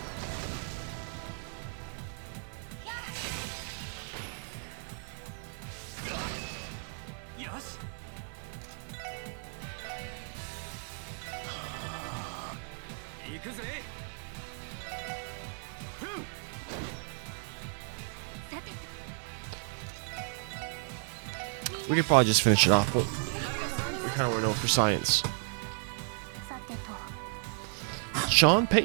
We could probably just finish it off, but I kind of want to know for science. Sean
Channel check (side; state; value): left; silent; 55 dB below the other